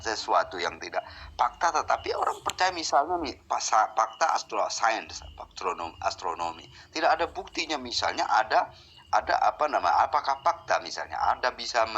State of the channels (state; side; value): identical; both; correlation 1.00